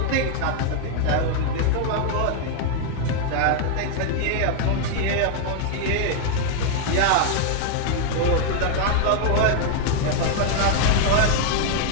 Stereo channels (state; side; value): different; both; correlation 0.00